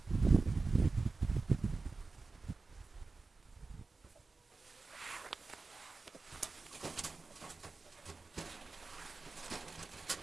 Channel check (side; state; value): left; quieter; 3.9 dB